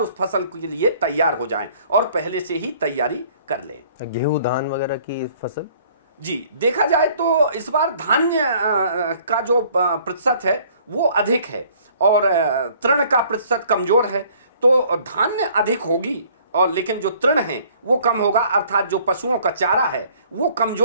उस फसल के लिए तैयार हो जाएं और पहले से ही तैयारी कर लें। गेहूं, धान वगैरह की फसल जी, देखा जाए तो इस बार धान्य का जो प्रतिशत है वो अधिक है और तृण का प्रतिशत कमजोर है। तो धान्य अधिक होगी और लेकिन जो तृण है वो कम होगा, अर्थात जो पशुओं का चारा है वो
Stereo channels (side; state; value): both; inverted; correlation -0.58